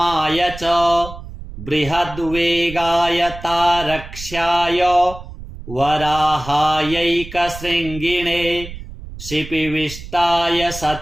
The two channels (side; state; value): right; noise; rumble, 13 dB below the sound